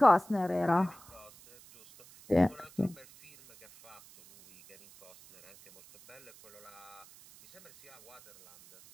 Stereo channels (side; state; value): right; noise; hiss, 23 dB below the sound